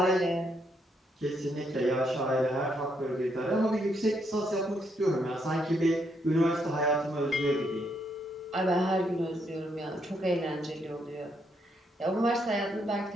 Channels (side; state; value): both; normal; correlation 0.76